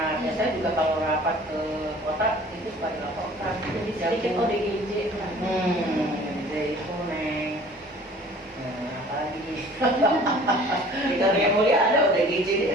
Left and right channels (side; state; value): both; normal; correlation 0.49